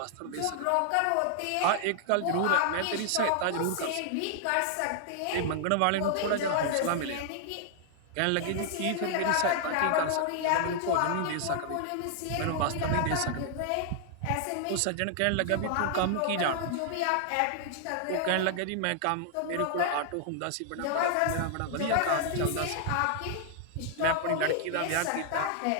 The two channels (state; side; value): different; both; correlation -0.01